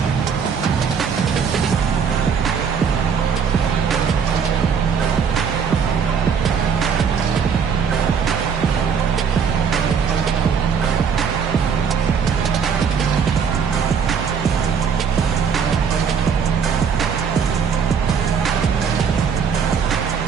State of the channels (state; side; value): quieter; left; 6.7 dB